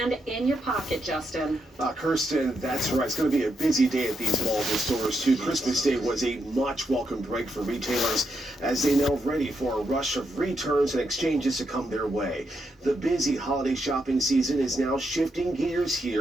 in your pocket, Justin. Kirsten, that's right. It's going to be a busy day at these malls and stores, too. Christmas Day was a much welcome break for retailers as they now ready for a rush of returns and exchanges to come their way. The busy holiday shopping season is now shifting gears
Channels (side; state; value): both; normal; correlation 0.81